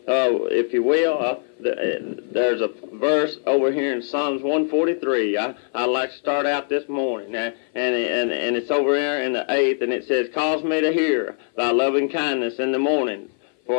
if you will, there's a verse over here in Psalms 143. I'd like to start out this morning, and it's over here in the 8th, and it says, "Cause me to hear thy loving kindness in the morning,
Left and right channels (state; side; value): silent; right; 57 dB below the other